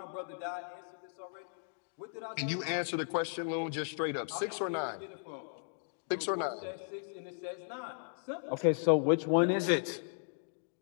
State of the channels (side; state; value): right; silent; digital silence